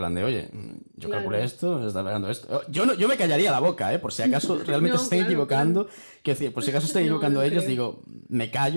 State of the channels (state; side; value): inverted; both; correlation -1.00